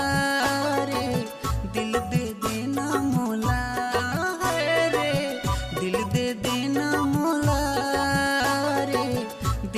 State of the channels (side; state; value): both; identical; correlation 1.00